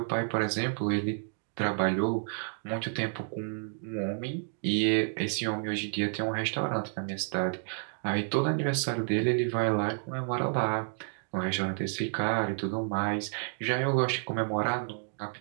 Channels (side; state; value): left; silent; 58 dB below the other